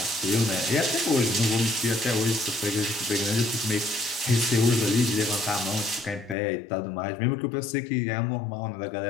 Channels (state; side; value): drops out; right; at 6.4 s